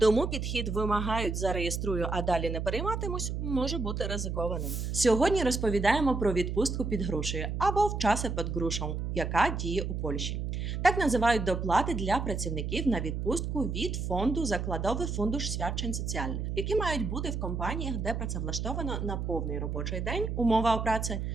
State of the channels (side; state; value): right; noise; hum, 3 dB below the sound